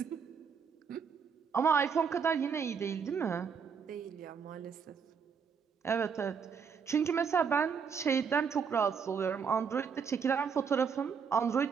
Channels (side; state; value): left; quieter; 6.3 dB